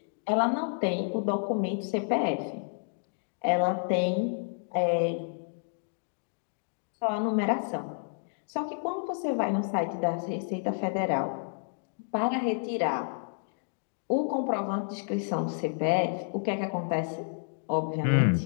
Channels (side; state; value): right; silent; digital silence